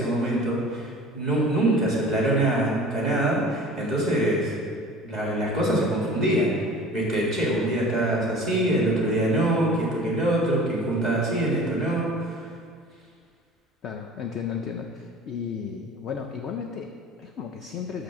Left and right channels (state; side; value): normal; both; correlation 0.43